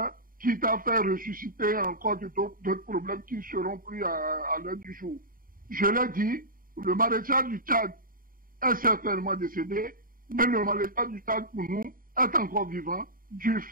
quitte à faire ressusciter encore d'autres problèmes qui ne seront plus à l'heure du jour. Je l'ai dit, le maréchal du Tchad est certainement décédé, mais le maréchal du Tchad, pour nous, est encore vivant, du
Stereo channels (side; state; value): left; late; 0.41 ms